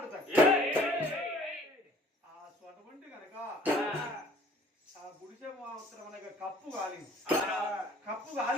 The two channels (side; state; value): both; normal; correlation 0.54